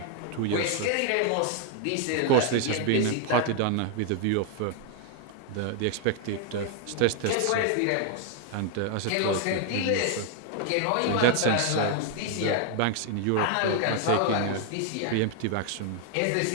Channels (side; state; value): both; different; correlation 0.00